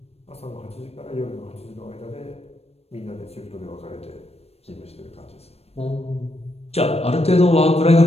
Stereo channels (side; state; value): right; late; 0.30 ms